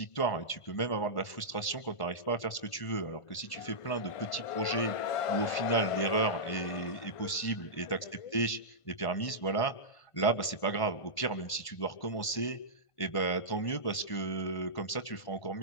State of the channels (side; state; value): right; late; 1.5 ms